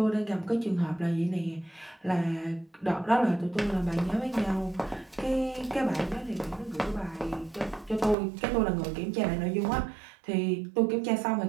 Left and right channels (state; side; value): drops out; left; at 8.2 s